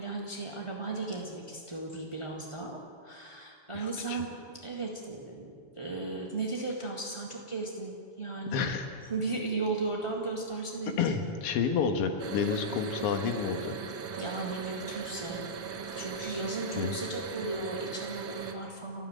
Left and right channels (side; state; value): right; late; 7.1 ms